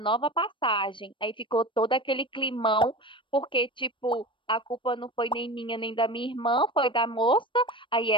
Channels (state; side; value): late; right; 0.24 ms